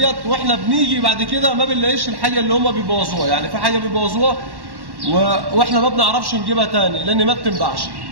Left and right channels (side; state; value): left; late; 1.1 ms